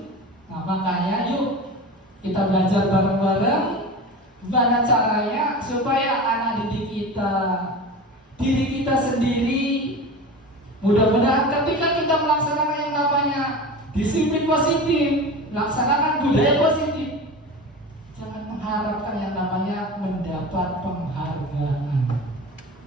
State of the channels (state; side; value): normal; both; correlation 0.31